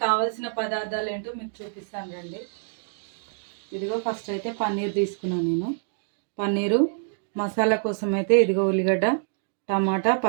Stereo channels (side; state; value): left; silent; digital silence